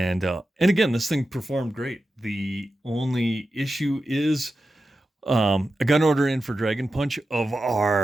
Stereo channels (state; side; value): normal; both; correlation 0.91